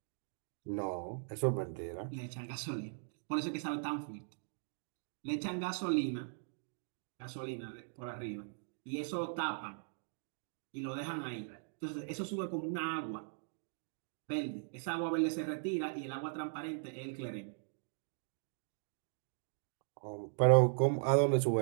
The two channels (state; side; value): silent; left; digital silence